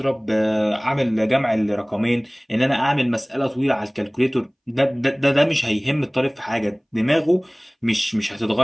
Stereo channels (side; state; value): both; identical; correlation 1.00